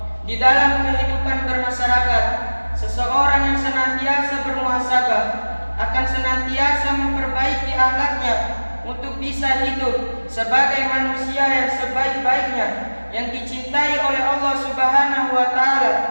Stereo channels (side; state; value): both; inverted; correlation -1.00